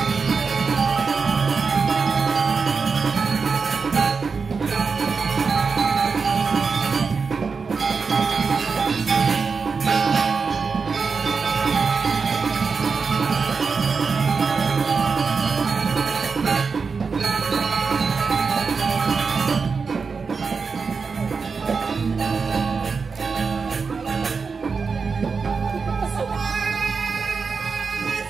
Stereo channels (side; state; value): left; quieter; 5.1 dB